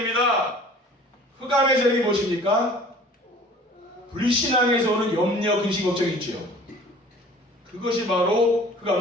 흑암의 세력이 무엇입니까? 불신앙에서 오는 염려, 근심, 걱정이 있죠. 그것이 바로 흑암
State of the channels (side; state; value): both; normal; correlation 0.48